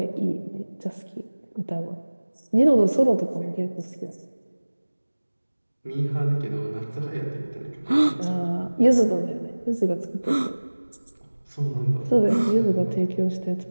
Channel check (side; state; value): both; inverted; correlation -1.00